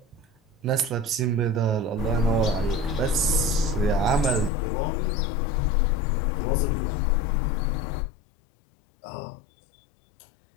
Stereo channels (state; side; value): drops out; right; at 4.5 s